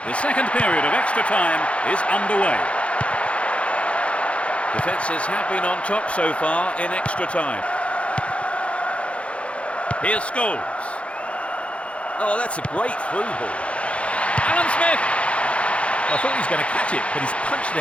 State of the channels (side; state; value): right; late; 0.061 ms